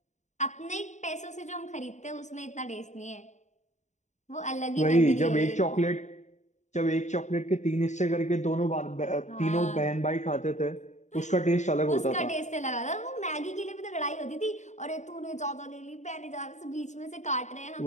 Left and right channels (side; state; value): right; late; 0.34 ms